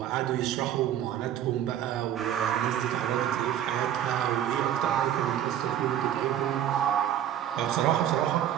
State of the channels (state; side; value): quieter; left; 10.8 dB